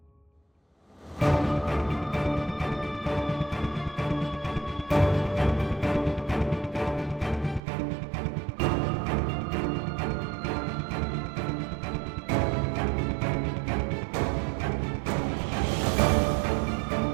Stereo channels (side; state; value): left; drops out; at 7.6 s